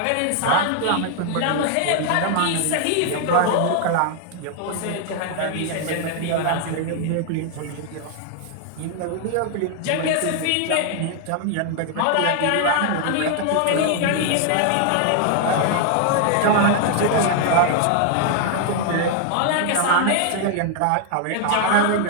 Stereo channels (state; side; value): different; both; correlation 0.00